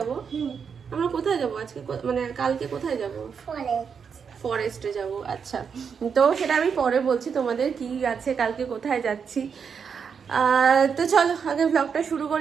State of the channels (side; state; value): left; quieter; 6.5 dB